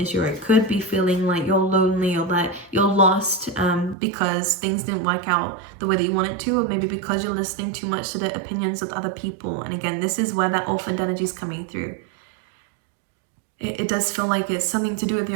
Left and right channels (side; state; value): left; drops out; at 4.0 s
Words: or it could be feeling like you're lonely, or that you're lost because things didn't work out the way that you wanted to, or maybe because you're listening too much to the opinions of other people. And again, this is where that orphaned energy is coming through. It does feel like it's something to do with